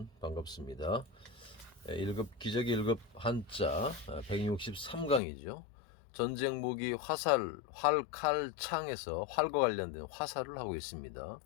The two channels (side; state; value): right; drops out; at 5.2 s